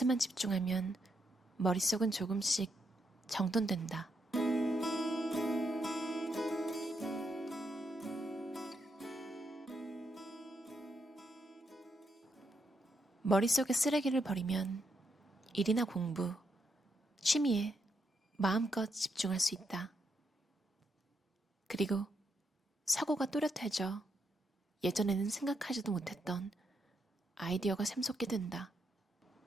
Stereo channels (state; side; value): normal; both; correlation 0.80